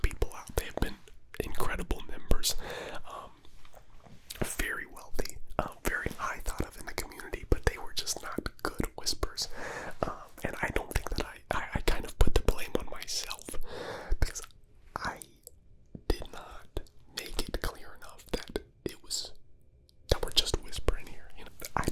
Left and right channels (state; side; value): identical; both; correlation 1.00